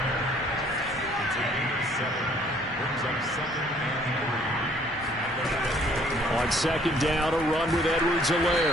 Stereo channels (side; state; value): both; normal; correlation 0.60